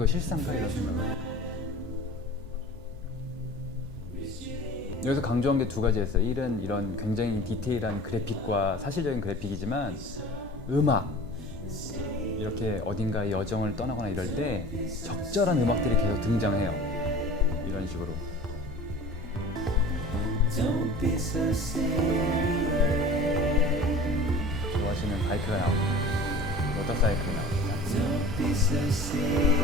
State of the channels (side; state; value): both; normal; correlation 0.41